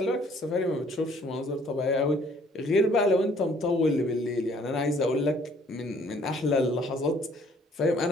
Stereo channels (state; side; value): normal; both; correlation 0.60